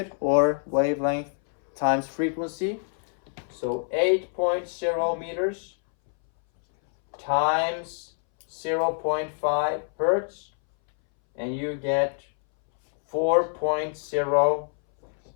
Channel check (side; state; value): right; silent; 61 dB below the other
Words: or wavelength times frequency. So 8.0 meters times 0.5 hertz, and you get 4.0.